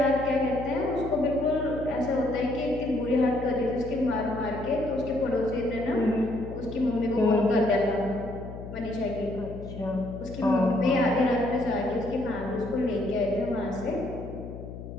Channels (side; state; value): left; noise; hum, 11 dB below the sound